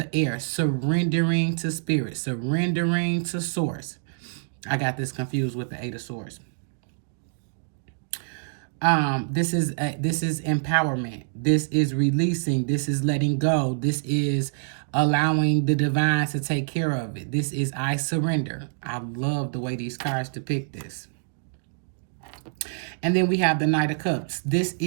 air, surrendering to spirit, surrendering to source. I got this confused with the Eight of Swords. This is empowerment. This is releasing. This is letting go. This is allowing the divine to take care of it. This is I surrender. I love the way these cards depict this. And then we have the Knight of Cups. This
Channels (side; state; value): left; silent; digital silence